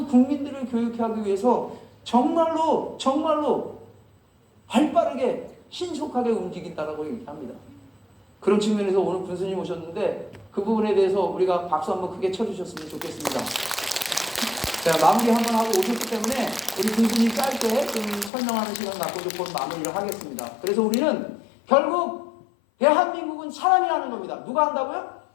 국민들을 교육하기 위해서 정말로 발빠르게 신속하게 움직인다라고 얘기합니다. 그런 측면에서 오늘 군수님 오셨는데 그 부분에 대해서 우리가 박수 한번 크게 쳐주셨으면 좋겠습니다. 자, 마무리 한번 하고 오셨기 때문에 우리 군수님 짧게 좀 설명하는 시간 갖고 좀 마무리를 하겠습니다. 그래서 우리는 결국 대한민국은 사람이 하는 겁니다. 누가 한다고요?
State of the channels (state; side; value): drops out; right; at 18.3 s